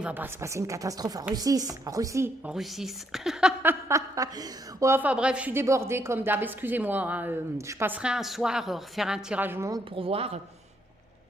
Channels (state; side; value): normal; both; correlation 0.73